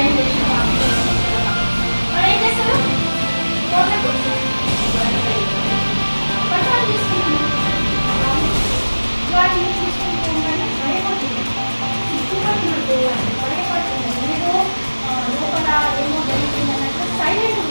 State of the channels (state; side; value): inverted; both; correlation -1.00